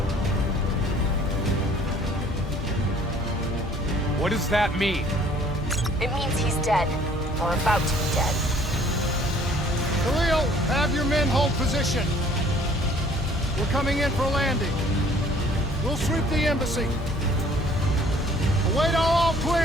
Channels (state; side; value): normal; both; correlation 0.56